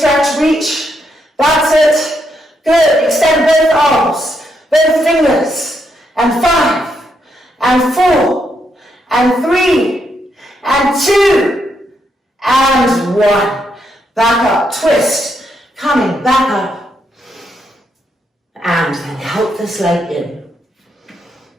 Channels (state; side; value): normal; both; correlation 0.78